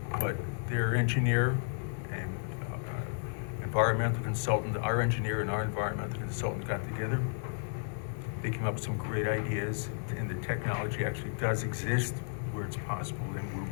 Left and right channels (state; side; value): silent; right; 56 dB below the other